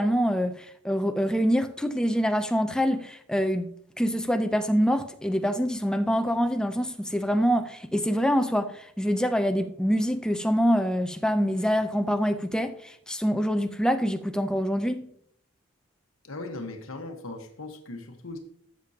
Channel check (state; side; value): normal; both; correlation 0.91